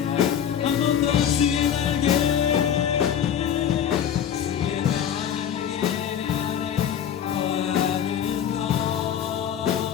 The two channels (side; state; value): right; quieter; 9.0 dB